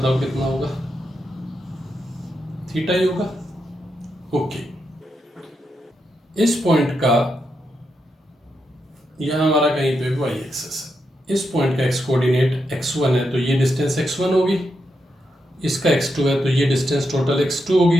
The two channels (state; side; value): normal; both; correlation 0.84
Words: कितना होगा? थीटा ही होगा। ओके। इस पॉइंट का यहां हमारा कहीं पे वाई एक्सिस है, इस पॉइंट का एक्स कोऑर्डिनेट x1 है, तो ये डिस्टेंस x1 होगी। इसका x2 है तो ये डिस्टेंस टोटल x2 होगी।